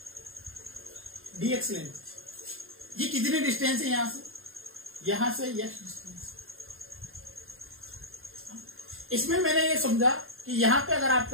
dx लेंथ। ये कितनी डिस्टेंस है यहां से x डिस्टेंस। इसमें मैंने ये समझा कि यहां पे अगर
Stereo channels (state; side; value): late; left; 0.61 ms